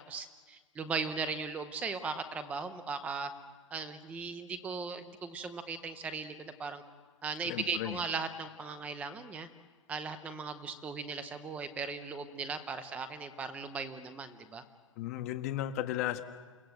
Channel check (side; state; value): both; normal; correlation 0.36